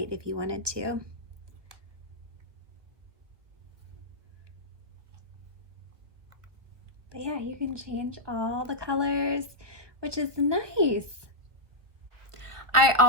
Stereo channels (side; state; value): left; late; 1.4 ms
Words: if you wanted to. But yeah, you can change all the colors, which is nice. I